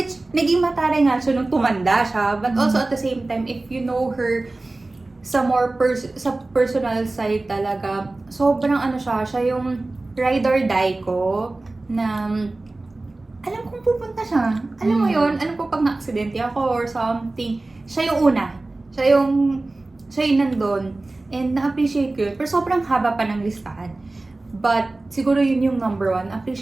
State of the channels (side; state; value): left; quieter; 3.0 dB